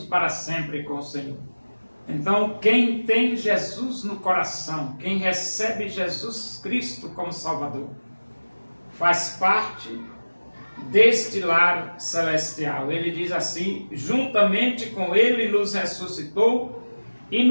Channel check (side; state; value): both; inverted; correlation -1.00